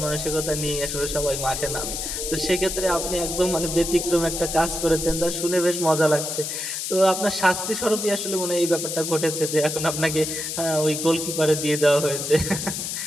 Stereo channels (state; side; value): noise; left; hiss, 4 dB below the sound